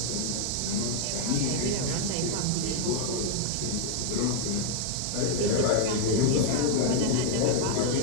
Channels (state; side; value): different; both; correlation 0.00